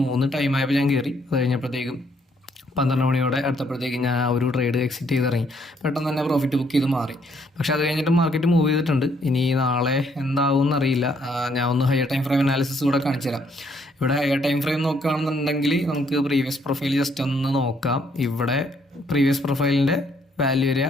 ടൈം ആയപ്പോൾ ഞാൻ കയറി. അത് കഴിഞ്ഞപ്പോഴത്തേക്കും 12 മണിയോടെ അടുത്തപ്പോഴത്തേക്ക് ഞാൻ ആ ഒരു ട്രേഡ് എക്സിറ്റ് ചെയ്തിറങ്ങി. പെട്ടെന്ന് തന്നെ പ്രോഫിറ്റ് ബുക്ക് ചെയ്ത് മാറി. പക്ഷെ അത് കഴിഞ്ഞിട്ട് മാർക്കറ്റ് മൂവ് ചെയ്തിട്ടുണ്ട്. ഇനി നാളെ എന്താവും എന്നറിയില്ല. ഞാൻ ഒന്ന് ഹയർ ടൈം ഫ്രെയിം അനാലിസിസ് കൂടെ കാണിച്ചു തരാം. ഇവിടെ ഹയർ ടൈം ഫ്രെയിം നോക്കുകയാണെന്നുണ്ടെങ്കിൽ നമുക്ക് പ്രീവിയസ് പ്രൊഫൈൽ ജസ്റ്റ് ഒന്ന് നോക്കാം. ഇവിടെ പ്രീവിയസ് പ്രൊഫൈലിൻ്റെ വാല്യൂ ഏരിയ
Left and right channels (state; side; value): normal; both; correlation 0.69